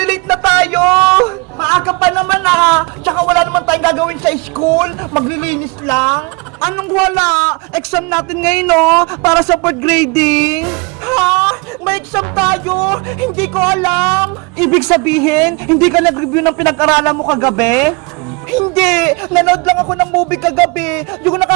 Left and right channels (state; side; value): quieter; left; 29.0 dB